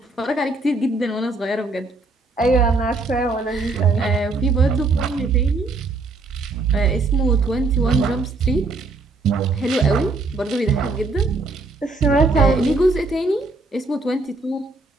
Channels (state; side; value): quieter; left; 3.4 dB